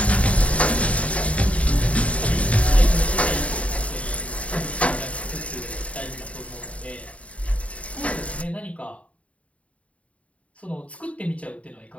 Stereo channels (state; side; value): late; right; 0.065 ms